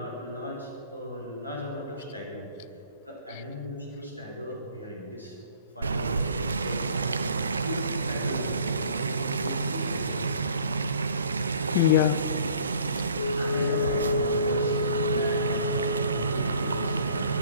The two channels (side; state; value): both; inverted; correlation -0.54